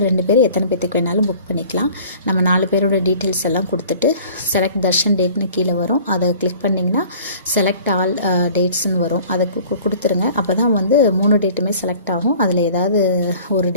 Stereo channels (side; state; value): both; inverted; correlation -0.47